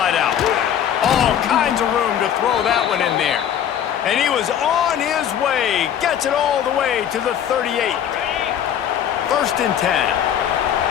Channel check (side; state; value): right; quieter; 9.6 dB